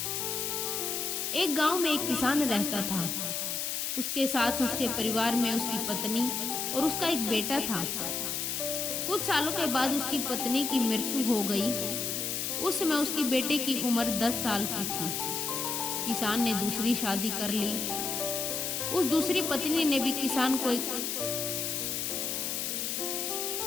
एक गांव में एक किसान रहता था। उसके साथ उसके परिवार में उसकी पत्नी और उसका एक बेटा था। कुछ सालों के बाद उसकी पत्नी की मृत्यु हो गई। उस समय उसकी बेटे की उम्र 10 साल की थी। किसान ने दूसरी शादी कर ली। उस दूसरी पत्नी ने भी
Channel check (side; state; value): left; noise; hiss, 1 dB below the sound